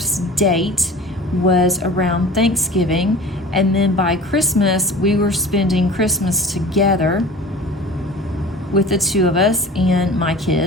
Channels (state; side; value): normal; both; correlation 0.40